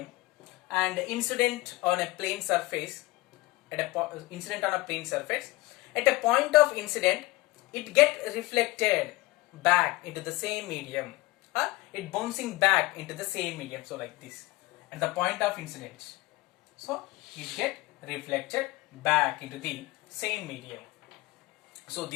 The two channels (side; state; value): right; quieter; 21.1 dB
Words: and incident on a plane surface, at a point of incident, it get reflected back into the same medium. It bouncing back into the same medium. So like this, at the point of incident, so it get reflected back into the same medium. So